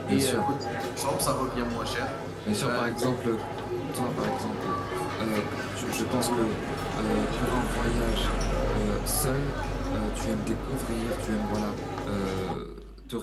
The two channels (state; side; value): identical; both; correlation 1.00